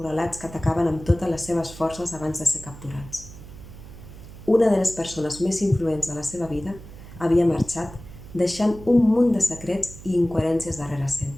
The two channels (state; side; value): noise; right; hum, 16 dB below the sound